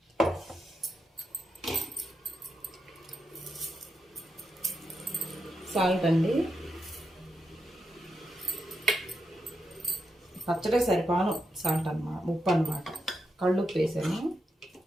సాల్ట్ అండి, పచ్చడి సరిపాను సాల్ట్ అన్నమాట, ఉప్పు అన్నమాట. కళ్ళుప్పు వేసాను.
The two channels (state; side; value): normal; both; correlation 0.84